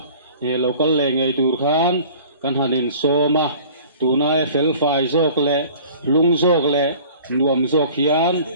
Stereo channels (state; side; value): inverted; both; correlation -0.47